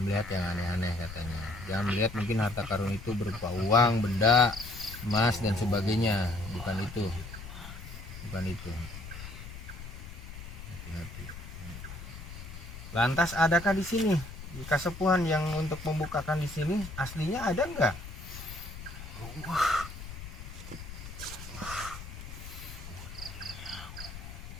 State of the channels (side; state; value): left; noise; rumble, 12 dB below the sound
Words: melihat yang aneh-aneh katanya. Jangan melihat mungkin harta karun itu berupa uang, benda, emas dan sebagainya. Bukan itu. Bukan itu. Hati-hati. Lantas adakah di sini kasepuhan yang untuk membukakan di sini aslinya ada enggak?